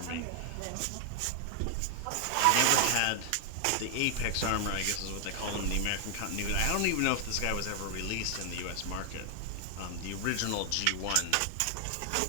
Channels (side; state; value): both; different; correlation 0.00